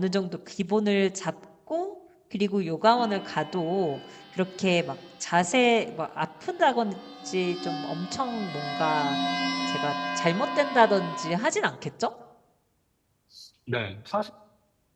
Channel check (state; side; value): identical; both; correlation 1.00